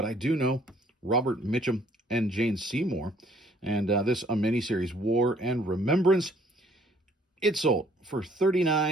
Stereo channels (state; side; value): normal; both; correlation 0.61